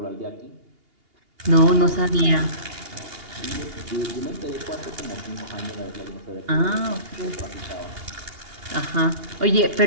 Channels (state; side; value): late; left; 2.8 ms